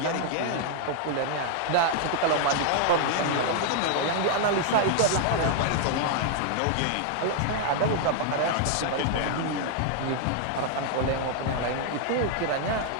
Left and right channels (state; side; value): different; both; correlation 0.00